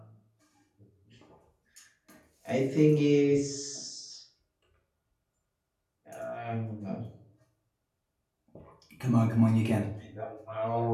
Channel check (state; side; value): identical; both; correlation 1.00